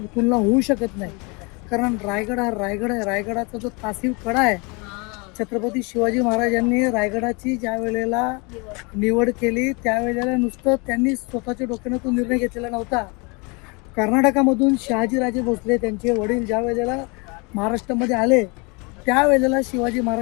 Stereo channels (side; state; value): right; quieter; 29.8 dB